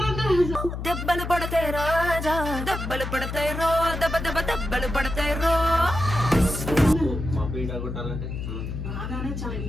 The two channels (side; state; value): left; noise; hum, 5 dB below the sound